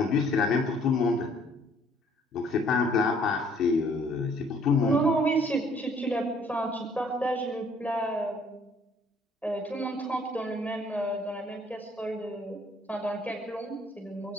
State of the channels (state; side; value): normal; both; correlation 0.61